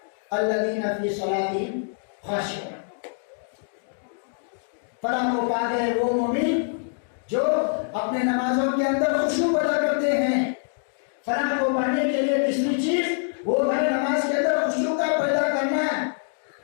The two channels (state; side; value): silent; right; digital silence